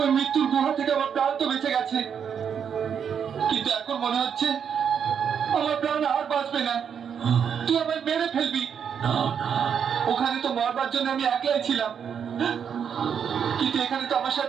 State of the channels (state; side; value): quieter; left; 7.6 dB